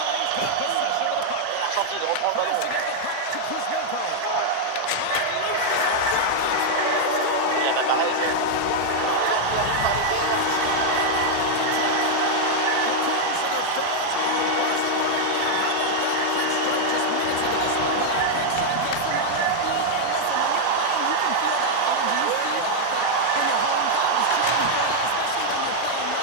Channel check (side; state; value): both; different; correlation 0.00